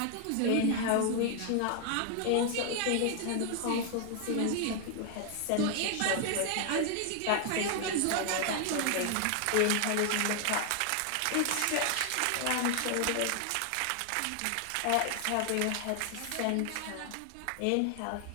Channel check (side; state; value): both; different; correlation 0.00